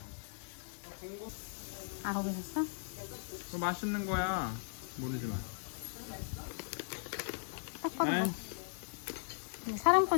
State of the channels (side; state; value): right; silent; digital silence